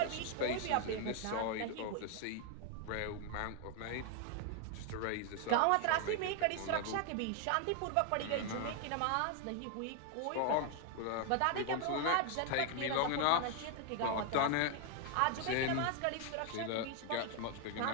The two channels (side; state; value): both; different; correlation 0.01